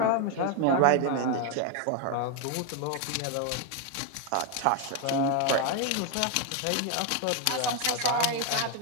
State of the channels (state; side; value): different; both; correlation 0.01